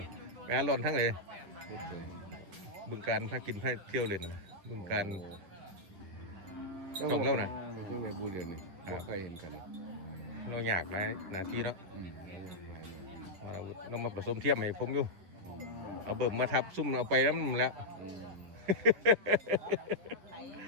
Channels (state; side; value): late; left; 11 ms